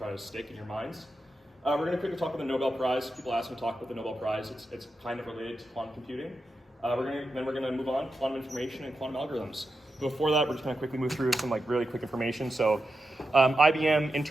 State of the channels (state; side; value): normal; both; correlation 0.89